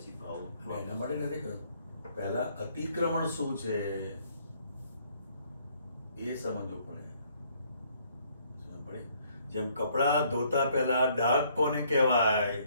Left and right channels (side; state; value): both; inverted; correlation -0.65